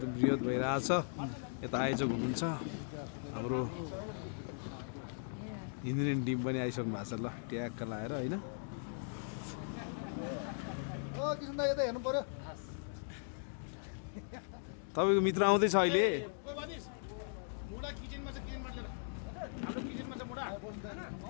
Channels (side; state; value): right; silent; digital silence